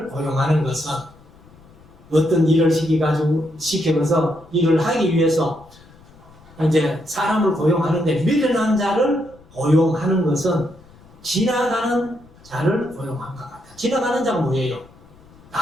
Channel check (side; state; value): left; noise; rumble, 25 dB below the sound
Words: 고용하는 것은 어떤 일을 시켜서 일을 하기 위해서 이제 사람을 고용하는데, 미련한 자를 고용하는 것은 지나가는 자를 고용한 것 같아요. 지나가는 자가 뭐예요?